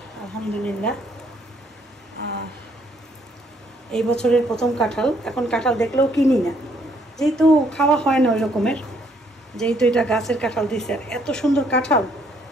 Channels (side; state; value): both; normal; correlation 0.68